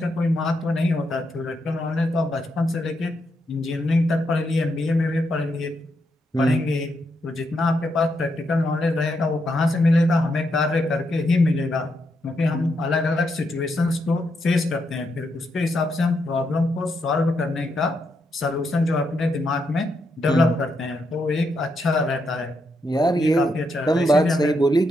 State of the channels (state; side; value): normal; both; correlation 0.81